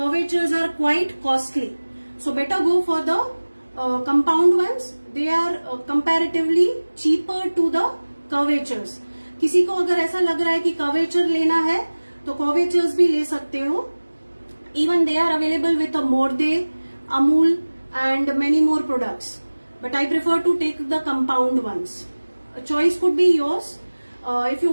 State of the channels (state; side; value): inverted; both; correlation -1.00